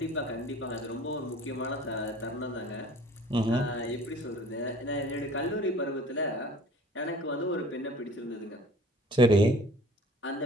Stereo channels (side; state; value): both; normal; correlation 0.47